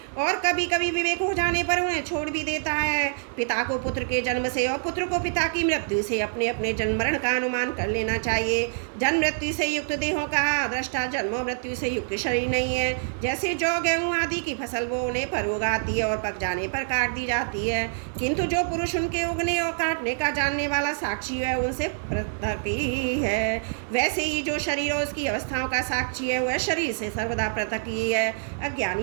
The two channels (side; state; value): left; silent; 61 dB below the other